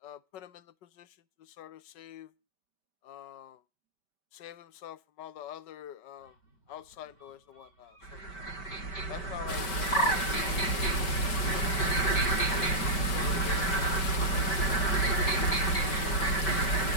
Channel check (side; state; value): right; late; 5.3 ms